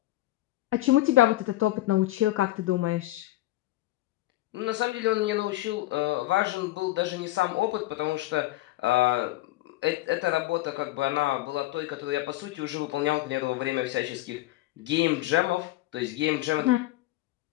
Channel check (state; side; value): quieter; right; 16.8 dB